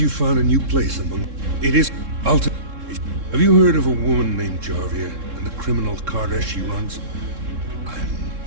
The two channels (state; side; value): late; left; 3.7 ms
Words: found a new place among... It is... Have you heard of a woman named Jarvia and the criminal carter she runs?